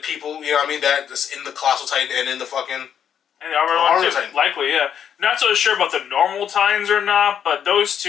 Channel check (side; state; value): right; quieter; 8.6 dB